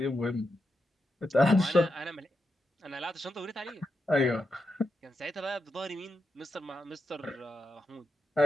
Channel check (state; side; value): normal; both; correlation 0.86